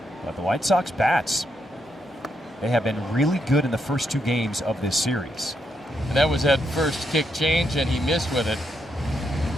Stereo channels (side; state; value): both; normal; correlation 0.80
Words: But the White Sox bats, they have been really good in the first 2 games of this series. And that was that first kick change, and he missed with it.